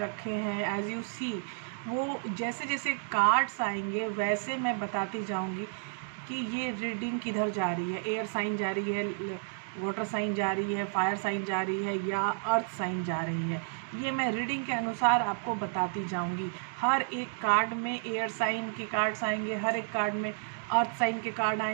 रखे हैं। एज यू सी, वो जैसे जैसे कार्ड्स आएंगे वैसे मैं बताती जाऊँगी कि ये रीडिंग किधर जा रही है। एयर साइन जा रही है, वाटर साइन जा रही है, फायर साइन जा रही है, या अर्थ साइन जा रही है। ये मैं रीडिंग के अनुसार आपको बताती जाऊंगी। हर एक कार्ड में एयर साइन के कार्ड्स आएंगे, हर एक कार्ड में अर्थ साइन के कार्ड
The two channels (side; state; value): left; silent; 57 dB below the other